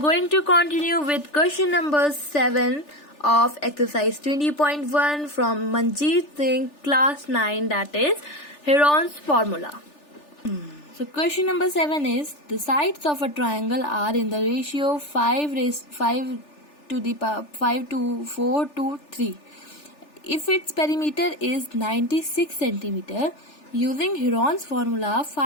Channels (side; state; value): right; late; 3.4 ms